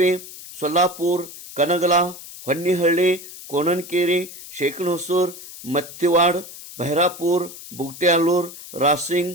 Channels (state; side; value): noise; left; hiss, 15 dB below the sound